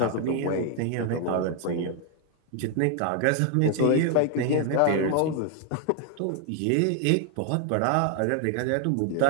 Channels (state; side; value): different; both; correlation 0.00